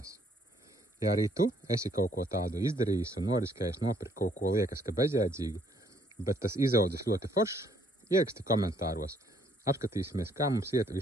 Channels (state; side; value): normal; both; correlation 0.66